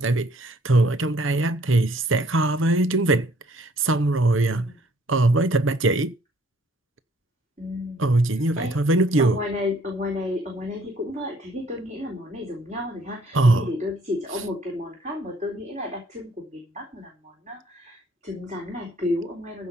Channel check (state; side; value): normal; both; correlation 0.61